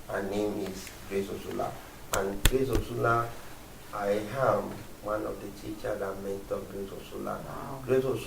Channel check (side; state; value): both; identical; correlation 1.00